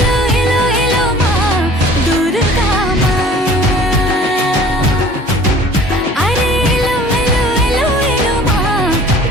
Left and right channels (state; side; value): normal; both; correlation 0.48